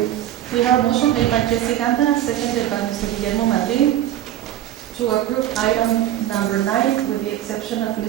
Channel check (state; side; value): quieter; left; 12.3 dB